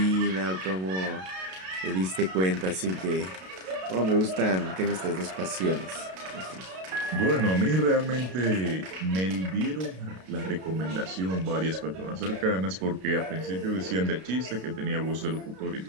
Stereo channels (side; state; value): left; late; 32 ms